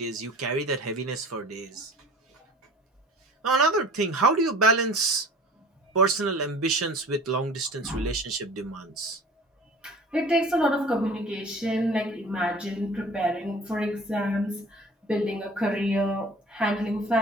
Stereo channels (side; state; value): both; normal; correlation 0.45